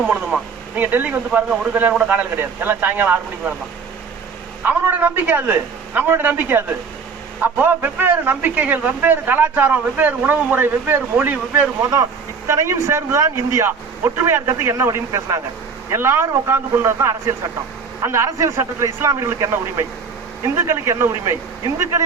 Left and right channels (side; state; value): left; quieter; 5.4 dB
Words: போனதுமா. நீங்க டெல்லிக்கு வந்து பாருங்க, ஒரு கல்யாணம் கூட காலையில் கிடையாது. எல்லாம் சாயங்காலம் 6 மணிக்கு வேண்டாம். அவனோட நம்பிக்கை அது, நம்மளோட நம்பிக்கை அது. அப்போ வெவ்வேறு நம்பிக்கைகள், வெவ்வேறு கலாச்சாரம், வெவ்வேறு உணவு முறை, வெவ்வேறு மொழி, வெவ்வேறு மதம், இத்தனையும் சேர்ந்துதான் இந்தியா. ஒற்றுமையா இருக்கிறதுக்கு என்ன வழின்னு பேசினாங்க. எல்லாரும் உட்கார்ந்து கொண்டதுதான் அரசியல் சட்டம். அந்த அரசியல் சட்டத்தில் இஸ்லாமியர்களுக்கு என்ன உரிமை, இந்துக்களுக்கு என்ன உரிமை,